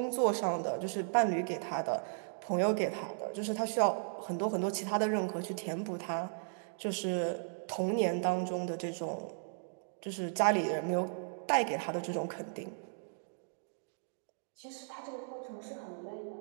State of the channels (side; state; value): left; silent; digital silence